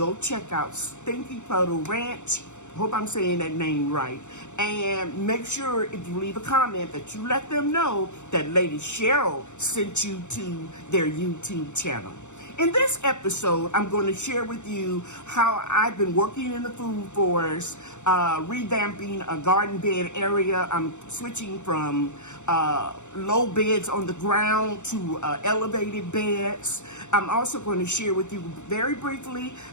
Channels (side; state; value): right; late; 0.84 ms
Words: check out Stinky Puddle Ranch. Hope I'm saying that name right. And make sure if you leave a comment that you let them know that Lady Cheryl sent you to their YouTube channel. In this episode, I'm going to share with you how I've been working in the food forest, revamping a garden bed area. I'm switching from low beds on the ground to elevated beds. I'm also going to share with you very briefly